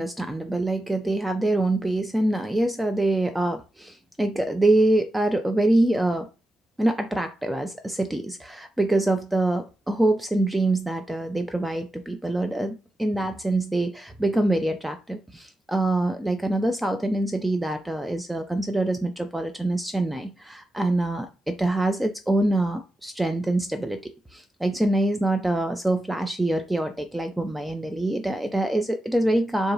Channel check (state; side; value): normal; both; correlation 0.90